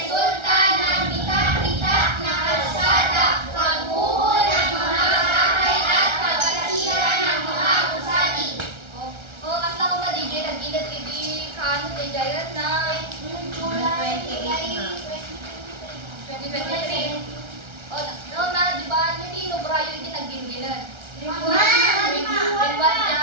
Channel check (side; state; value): left; late; 1.3 ms